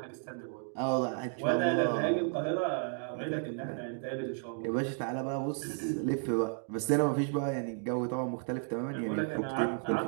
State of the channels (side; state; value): left; silent; 56 dB below the other